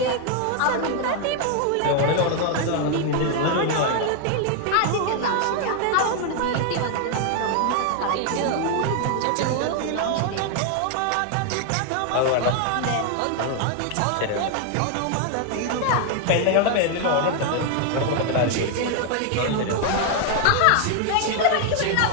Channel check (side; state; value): both; different; correlation 0.00